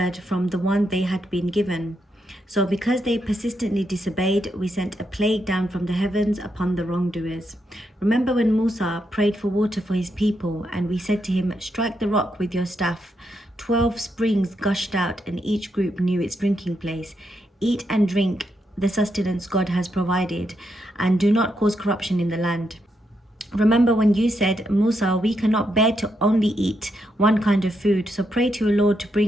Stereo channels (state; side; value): normal; both; correlation 0.81